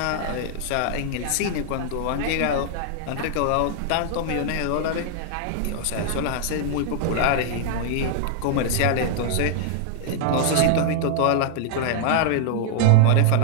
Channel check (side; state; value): both; different; correlation 0.00